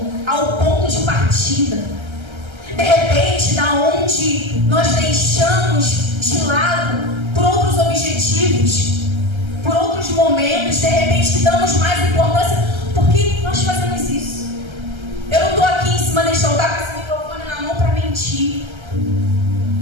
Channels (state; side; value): late; left; 1.3 ms